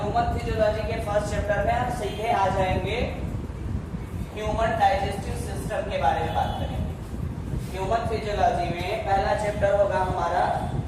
फिजियोलॉजी के फर्स्ट चैप्टर में हम सीधे आ जाएंगे ह्यूमन डाइजेस्टिव सिस्टम के बारे में बात करेंगे। ह्यूमन फिजियोलॉजी में पहला चैप्टर होगा हमारा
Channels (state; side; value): identical; both; correlation 1.00